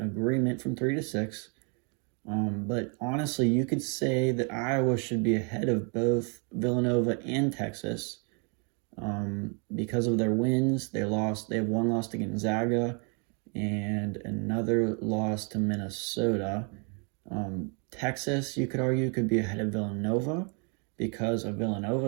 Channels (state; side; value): quieter; left; 36.4 dB